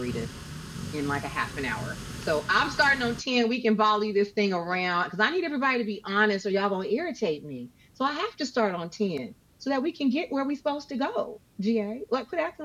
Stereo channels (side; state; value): both; identical; correlation 1.00